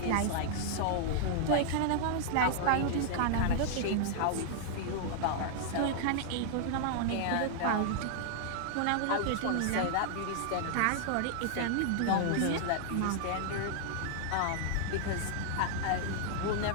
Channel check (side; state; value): both; different; correlation -0.01